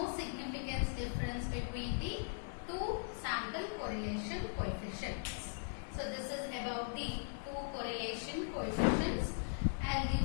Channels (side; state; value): right; silent; 52 dB below the other